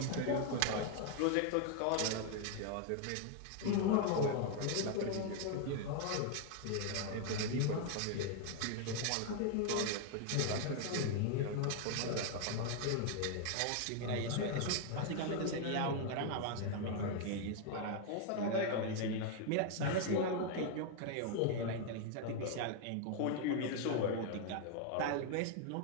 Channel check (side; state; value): both; different; correlation 0.00